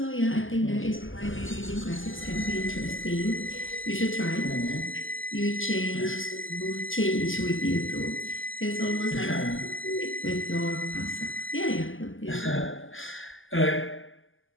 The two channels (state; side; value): late; right; 0.58 ms